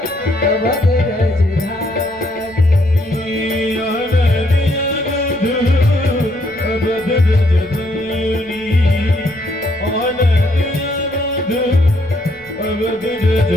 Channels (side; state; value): left; noise; rumble, 27 dB below the sound